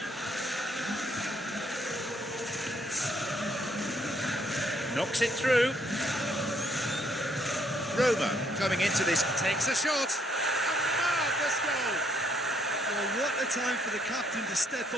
Knocks it through. Roma coming into this. Takes a shot. A marvellous goal. Well, what a time for the captain to step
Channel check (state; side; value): normal; both; correlation 0.70